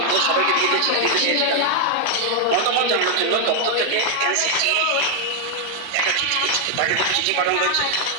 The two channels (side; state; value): both; different; correlation 0.00